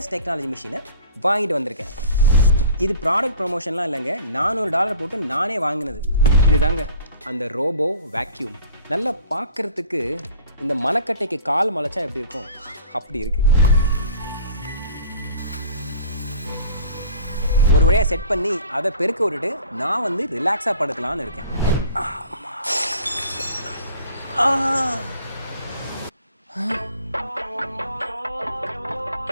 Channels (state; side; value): inverted; both; correlation -0.48